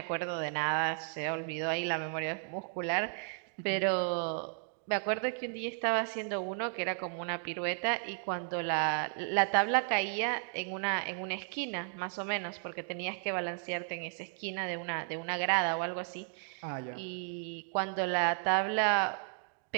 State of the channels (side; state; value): left; silent; 55 dB below the other